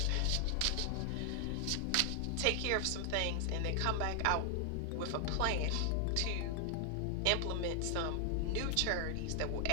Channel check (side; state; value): both; different; correlation 0.00